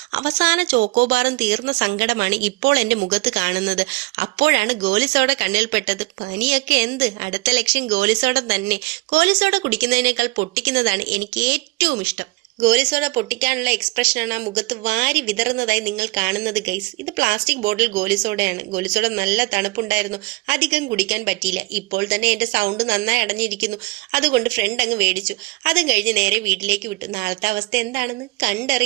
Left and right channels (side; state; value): left; quieter; 22.9 dB